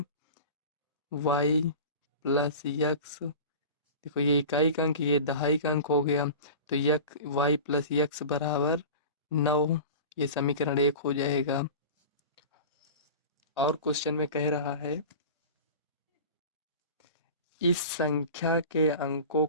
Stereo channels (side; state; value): both; inverted; correlation -0.35